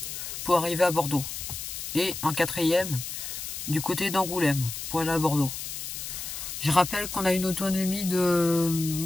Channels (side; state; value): left; noise; hiss, 7 dB below the sound